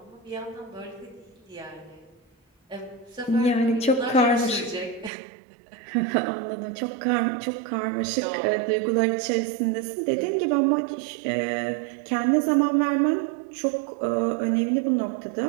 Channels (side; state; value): left; drops out; at 5.1 s